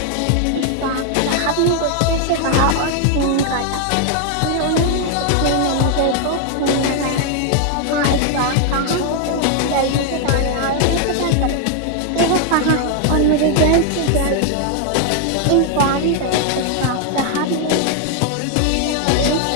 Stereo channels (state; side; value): different; both; correlation 0.00